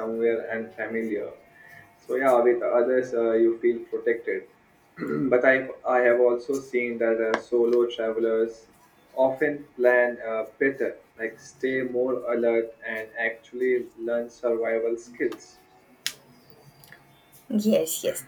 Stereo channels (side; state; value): both; identical; correlation 1.00